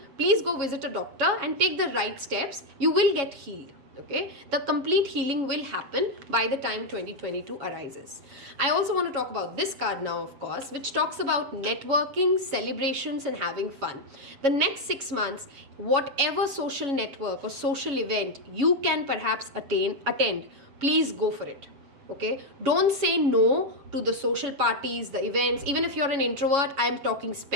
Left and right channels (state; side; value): late; left; 7.2 ms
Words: please go visit a doctor and take the right steps. You will get healed. Okay, the complete healing will happen by the time 2022 arises. I also want to talk about this card now, of course, which talks about networking, celebrations, and having fun. The next 6 months, whatever social network or social event you can perhaps attend, please go for it. Okay, don't say no to the social parties, the events. Even if you're an introvert, I am talking